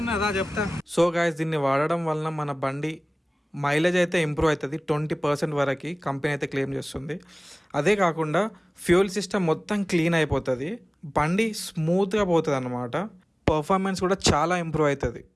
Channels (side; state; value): both; normal; correlation 0.98